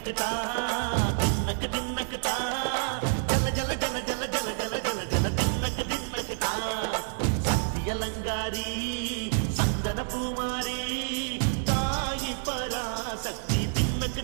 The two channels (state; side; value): silent; left; 59 dB below the other